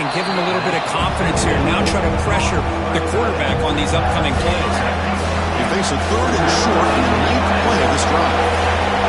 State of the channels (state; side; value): identical; both; correlation 1.00